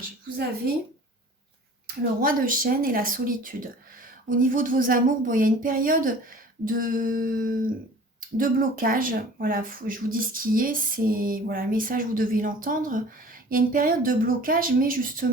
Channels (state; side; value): normal; both; correlation 0.45